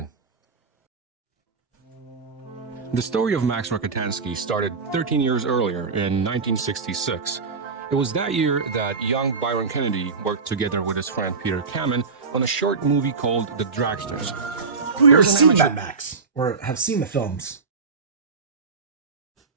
The story of Max Rokitansky started 13 years earlier in 1966. It was that year that young Byron Kennedy worked together with his friend Peter Kamen on a short movie called The Dragsters. Who ever seen Mad Max or have seen the films?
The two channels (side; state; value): left; quieter; 4.7 dB